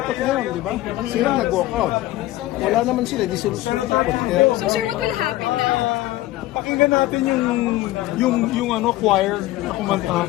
ngayon, di ba? Sila nag-walkout. Wala naman sila, di sila susunod. So, sir, what will happen now? Pakinggan natin yung choir na kumanta.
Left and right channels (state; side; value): quieter; right; 16.3 dB